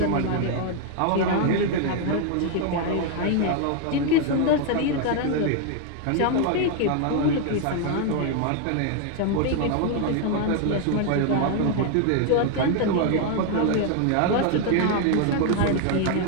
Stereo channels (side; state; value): both; different; correlation 0.00